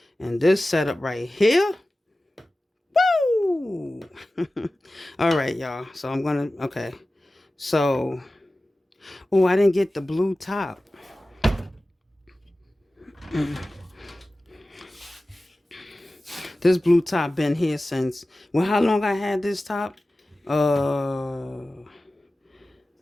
And this setup right here, woo! All right, y'all. So I'm going to, okay. So, oh, I didn't get the blue top. This blue top been here since, well, how long I had this top?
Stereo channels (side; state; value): both; normal; correlation 0.96